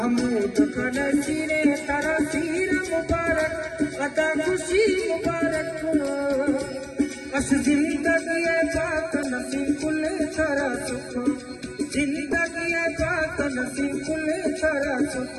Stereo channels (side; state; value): both; identical; correlation 1.00